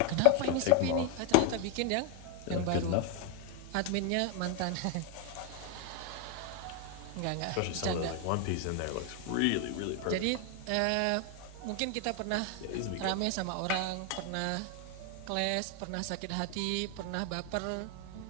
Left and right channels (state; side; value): different; both; correlation 0.00